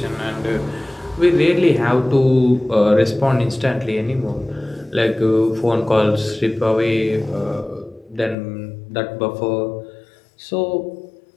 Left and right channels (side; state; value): right; drops out; at 8.3 s